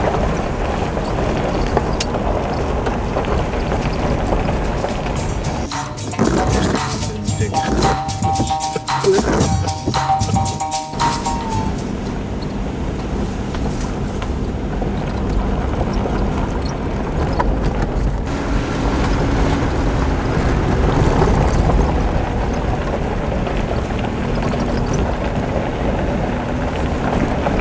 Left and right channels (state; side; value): identical; both; correlation 1.00